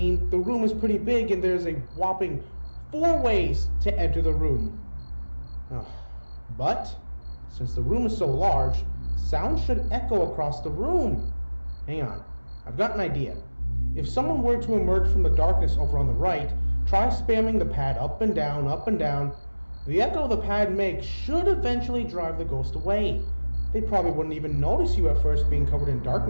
the room is pretty big and there's a whopping 4 ways to enter the room. But, since the room is so large, sound should echo across the room. Hang on, I've got an idea. If someone were to emerge from the darkness over on the right, try spamming the pad up and down, up and down. The echo the pad makes should eventually drive the ghost away. They probably wouldn't even notice you at first being covered in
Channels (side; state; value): both; inverted; correlation -1.00